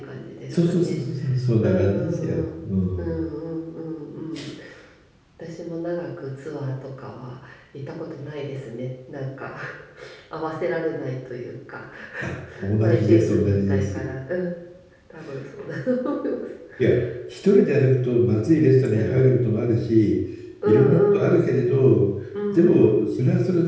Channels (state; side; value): identical; both; correlation 1.00